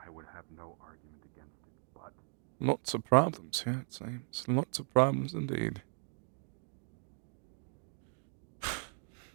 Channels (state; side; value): silent; left; 53 dB below the other